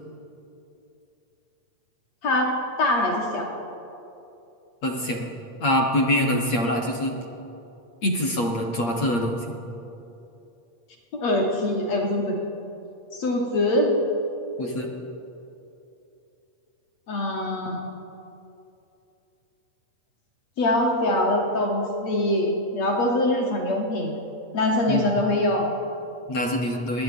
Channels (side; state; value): right; late; 8.5 ms